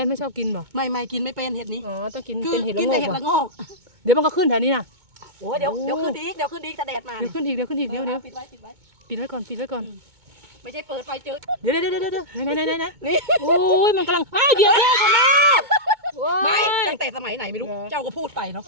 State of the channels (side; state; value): left; late; 2.2 ms